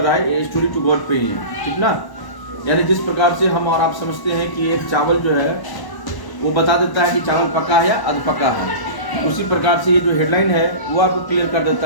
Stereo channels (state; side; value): late; right; 1.0 ms